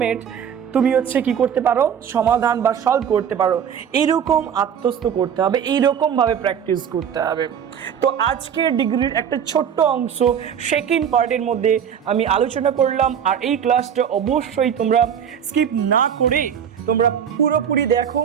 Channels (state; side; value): quieter; left; 8.3 dB